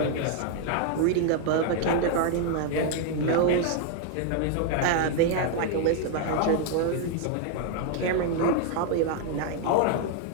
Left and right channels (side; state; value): both; different; correlation 0.00